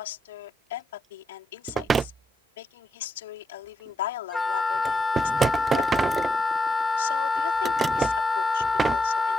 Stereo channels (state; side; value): normal; both; correlation 0.84